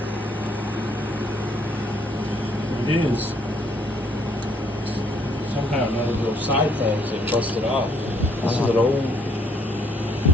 It is. Somehow none of those side things have busted off. This is an old,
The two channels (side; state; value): both; normal; correlation 0.67